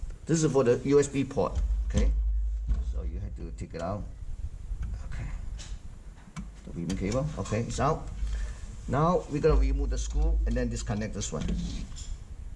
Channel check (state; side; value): identical; both; correlation 1.00